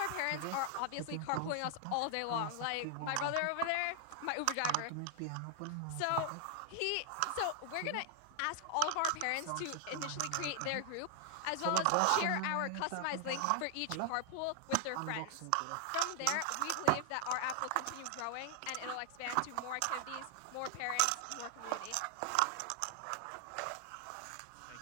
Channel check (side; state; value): both; different; correlation 0.00